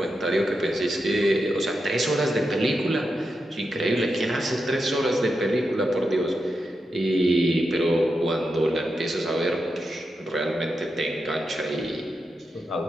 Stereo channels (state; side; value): normal; both; correlation 0.87